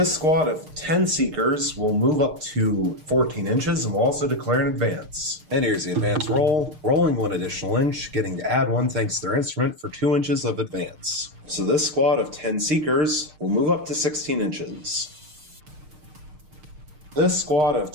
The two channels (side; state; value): left; late; 6.6 ms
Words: squad of 10 Seekers will move up to 14 inches and will also declare an advance. And here's the advance roll, rolling 1 additional inch, getting to add 1 thanks to their instrument for 2 inches of advance. So this squad of 10 Seekers will move up to 16 inches. This squad of